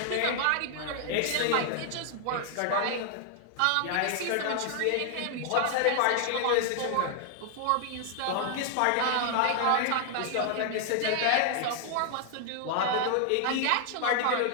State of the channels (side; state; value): both; different; correlation 0.00